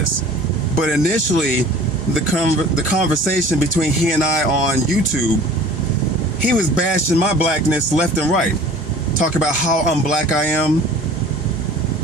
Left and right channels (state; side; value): normal; both; correlation 0.46